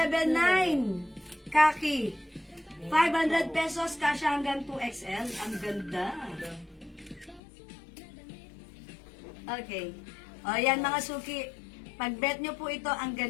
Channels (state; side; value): drops out; right; at 7.4 s